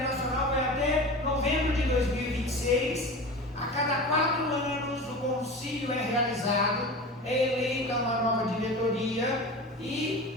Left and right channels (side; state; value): both; normal; correlation 0.32